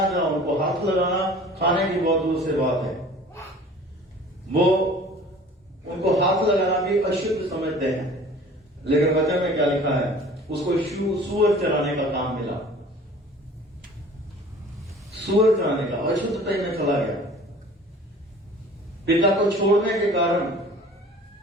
जहां उनको हाथ लगाना, खाने की बहुत दूर से बात है, वो उनको हाथ लगाना भी अशुद्ध समझते हैं। लेकिन वचन में क्या लिखा है? उसको सूअर चराने का काम मिला, सूअर चराने का, अशुद्धता में चला गया। पिता को छोड़ने के कारण,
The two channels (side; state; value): both; normal; correlation 0.46